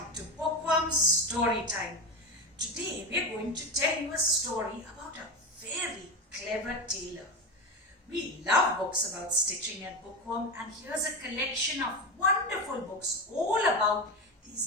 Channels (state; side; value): normal; both; correlation 0.19